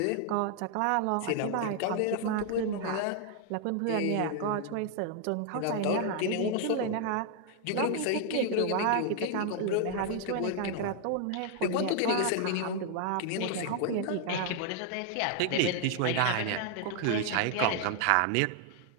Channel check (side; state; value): both; different; correlation 0.00